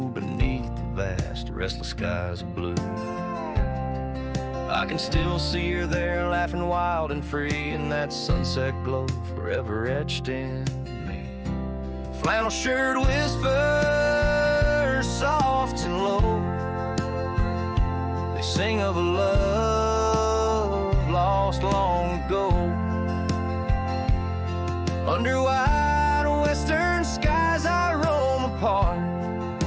beneath the vast restless skies of blue. I can still see her there, laughing wild and free in that sunset glow forever etched in me. Flannel shirt whispers soft and low, they sing of a love lost long ago. Under wide western skies I roam apart,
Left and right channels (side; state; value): both; identical; correlation 1.00